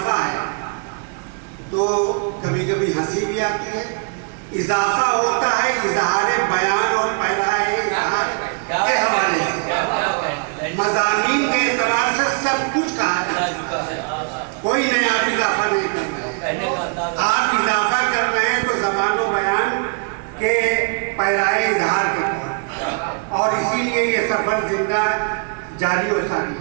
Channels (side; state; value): left; quieter; 39.3 dB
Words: ہے, تو کبھی کبھی ہنسی بھی آتی ہے. اضافہ ہوتا ہے اظہار بیان اور پیرائے اظہار کے حوالے سے. مضامین کے اعتبار سے سب کچھ کہا ہے, کوئی نیا اضافہ نہیں کرنا ہے. آپ اضافہ کر رہے ہیں تو زبان و بیان کے پیرائے اظہار کے طور, اور اسی لیے یہ سفر زندہ جاری و ساری